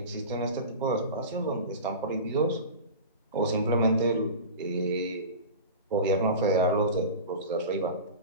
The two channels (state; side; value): inverted; both; correlation -0.31